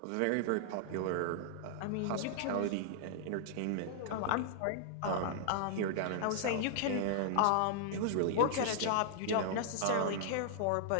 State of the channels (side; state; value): both; different; correlation -0.01